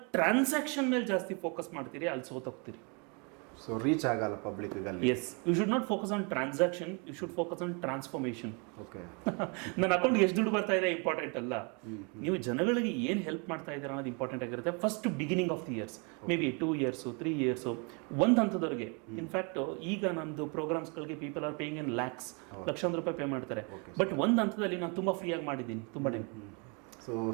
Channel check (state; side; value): quieter; left; 33.7 dB